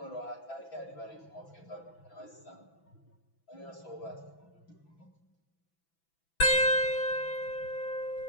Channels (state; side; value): late; right; 6.0 ms